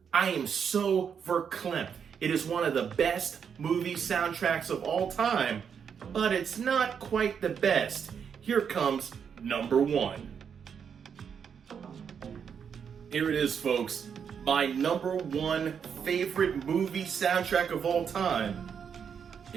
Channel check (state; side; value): quieter; left; 7.2 dB